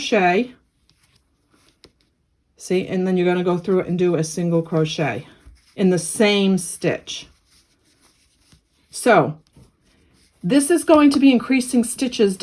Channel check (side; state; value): both; identical; correlation 1.00